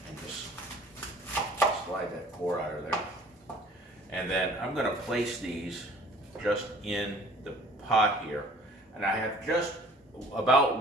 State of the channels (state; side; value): normal; both; correlation 0.51